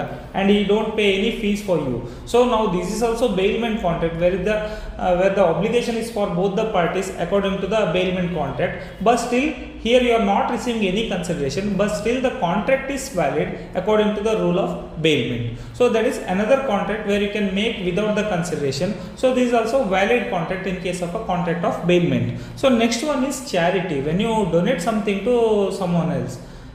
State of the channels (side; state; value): both; identical; correlation 1.00